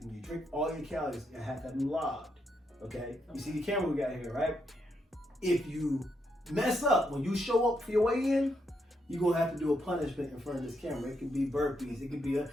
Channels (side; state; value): both; normal; correlation 0.79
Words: you drink, all your calories, you have that logged. Okay? You see the camera we got here, right? If you mess up when you show up for your weigh-in, you're gonna have to do a punishment in front of this camera. It can be burpees. It can be